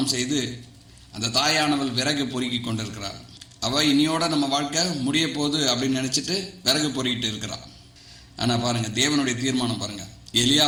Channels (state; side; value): identical; both; correlation 1.00